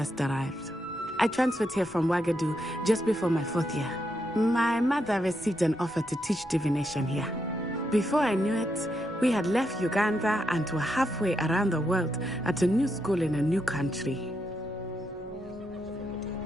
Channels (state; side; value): normal; both; correlation 0.81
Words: arrived. I transferred here from Ouagadougou just before my 4th year. My mother received an offer to teach divination here. Before I knew it, we had left Uganda and were halfway around the world at a new school in a new country.